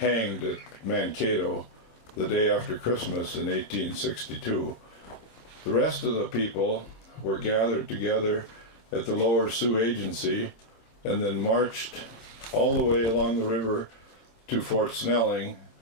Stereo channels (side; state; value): right; late; 26 ms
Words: at Mankato the day after Christmas in 1862. The rest of the people were gathered together at the Lower Sioux Agency and then marched all the way along the river to Fort Snelling